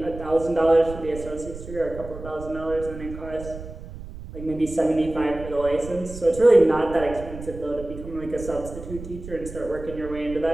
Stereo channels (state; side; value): noise; right; rumble, 12 dB below the sound